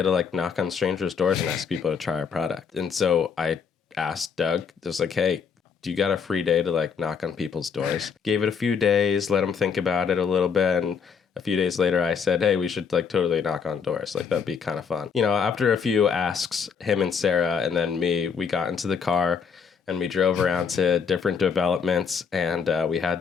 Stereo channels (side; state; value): right; quieter; 6.3 dB